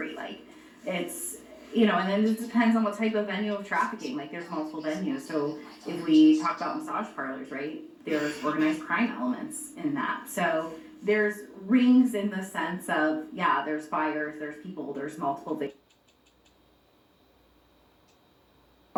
Like, it's, you know, and then it just depends on what type of venue of trafficking. Like, there's multiple venues. So if we talk about massage parlors, right, there's organized crime elements in that. So there's rings in the sense of, yeah, there's buyers, there's people, there's multiple victims.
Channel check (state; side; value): identical; both; correlation 1.00